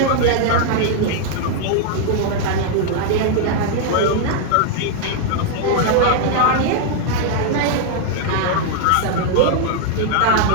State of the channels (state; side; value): different; both; correlation 0.00